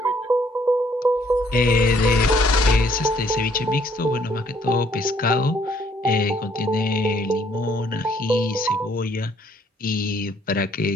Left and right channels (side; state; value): both; normal; correlation 0.65